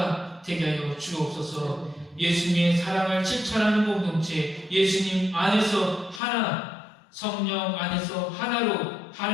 되게 하여 주옵소서. 예수님의 사랑을 실천하는 공동체, 예수님 안에서 하나, 성령 안에서 하나로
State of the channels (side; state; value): right; drops out; at 6.2 s